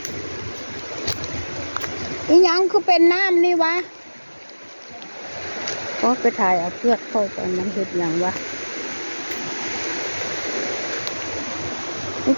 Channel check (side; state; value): both; inverted; correlation -1.00